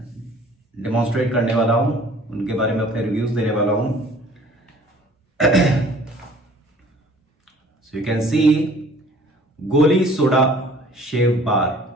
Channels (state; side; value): normal; both; correlation 0.52